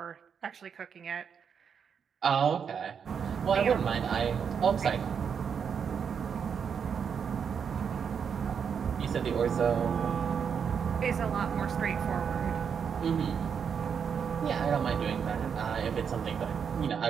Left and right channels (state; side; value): quieter; left; 7.0 dB